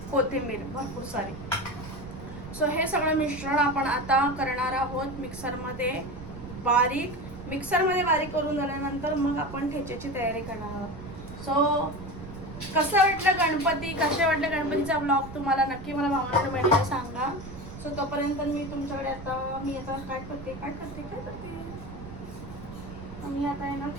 कोथिंबीर भरपूर सारी. सो हे सगळं मिश्रण आपण आता करणार आहोत मिक्सरमध्ये बारीक करून झाल्यानंतर मग आपण ठेच्याची तयारी करणार आहोत. सो कसं वाटलं गणपती, कसे वाटलं गणपतीचा ब्लॉग तुम्हाला नक्की मला भावना बहिणीला सांगा. सो तोपर्यंत मी तुमच्याकडे आता काय करते मी आता आहे ना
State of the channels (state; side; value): noise; right; rumble, 13 dB below the sound